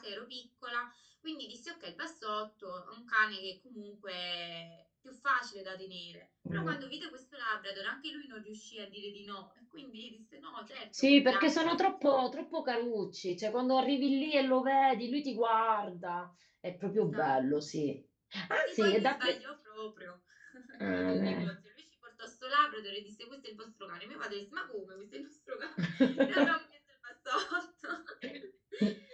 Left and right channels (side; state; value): both; identical; correlation 1.00